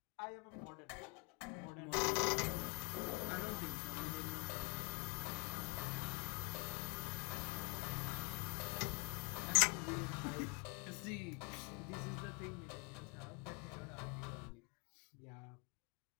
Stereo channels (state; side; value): quieter; right; 33.8 dB